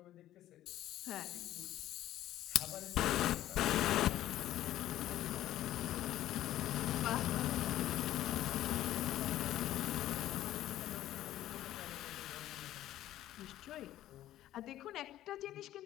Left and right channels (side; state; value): right; quieter; 13.5 dB